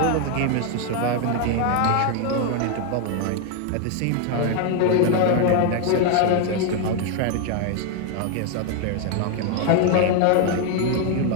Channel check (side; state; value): both; different; correlation 0.01